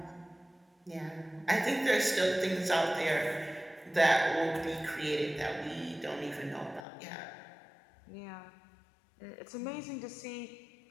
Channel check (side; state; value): right; drops out; at 6.9 s